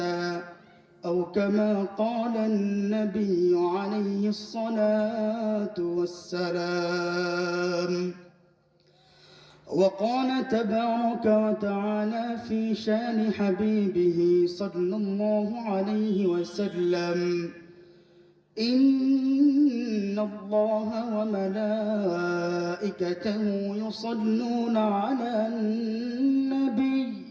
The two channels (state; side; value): identical; both; correlation 1.00